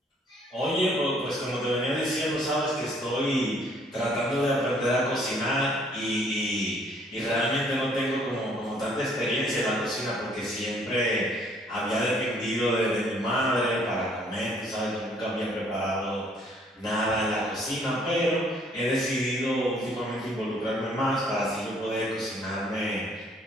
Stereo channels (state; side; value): normal; both; correlation 0.62